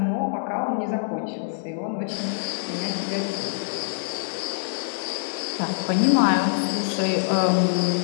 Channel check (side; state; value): right; silent; digital silence